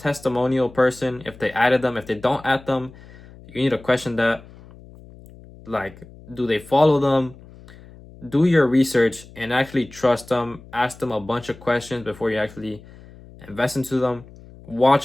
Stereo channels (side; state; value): left; noise; hum, 21 dB below the sound